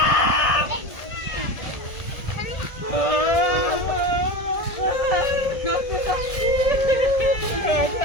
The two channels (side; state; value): right; late; 1.7 ms